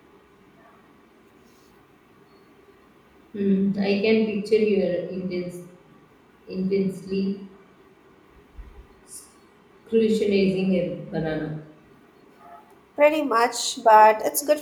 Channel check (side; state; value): both; identical; correlation 1.00